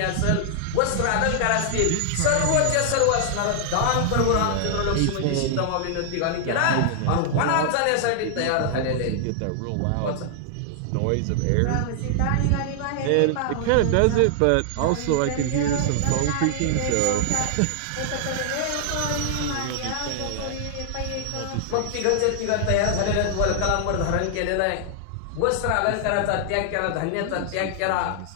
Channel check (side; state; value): both; different; correlation 0.00